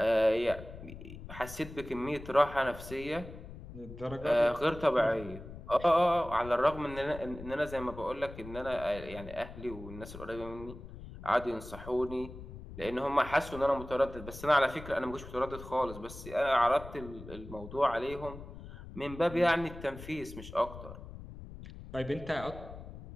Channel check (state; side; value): noise; left; rumble, 13 dB below the sound